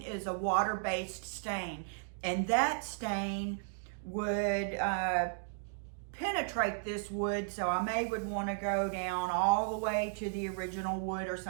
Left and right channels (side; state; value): left; silent; digital silence